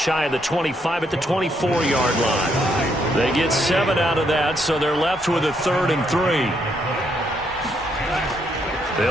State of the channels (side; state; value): both; normal; correlation 0.74